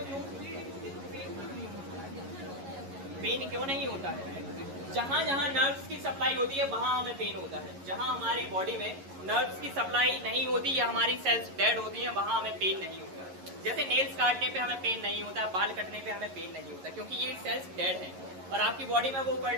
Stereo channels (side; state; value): left; late; 11 ms